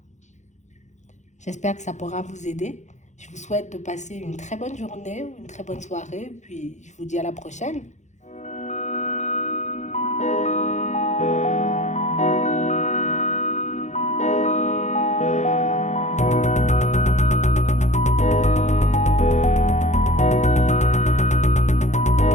J'espère que ça pourra vous aider. Je vous souhaite de passer une très bonne journée ou une très bonne soirée. Puis je vous dis à la prochaine.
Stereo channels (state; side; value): late; right; 0.34 ms